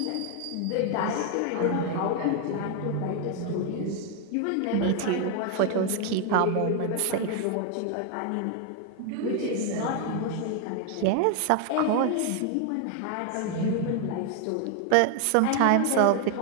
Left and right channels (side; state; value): both; different; correlation 0.01